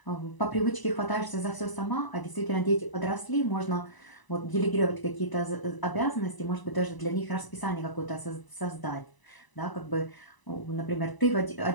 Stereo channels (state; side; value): late; right; 1.0 ms